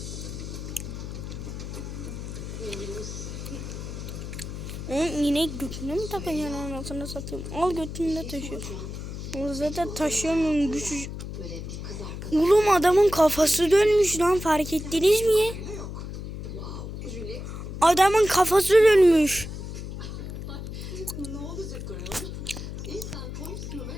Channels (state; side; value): noise; left; hum, 8 dB below the sound